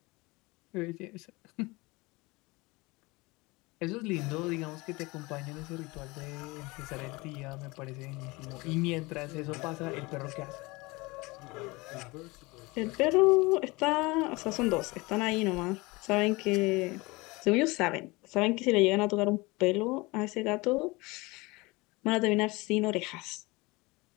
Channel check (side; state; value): right; quieter; 23.8 dB